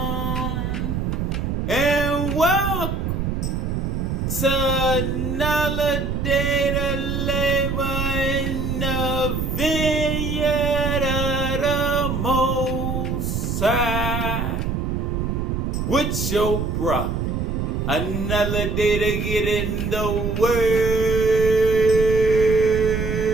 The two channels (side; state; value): right; noise; rumble, 2 dB below the sound